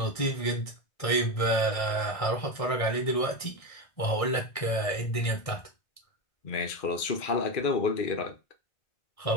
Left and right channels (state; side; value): late; right; 1.6 ms